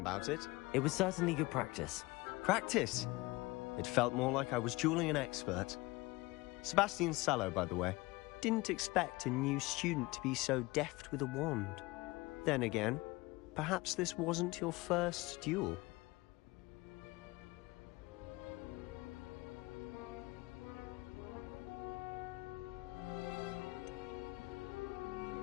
it. It was certainly good practice. Practice? It felt more like I was dueling an expert. Sebastian Sallow, by the way. Didn't expect a new student to be so deft with a wand. Then again, perhaps this wasn't your first duel.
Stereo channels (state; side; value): quieter; right; 21.9 dB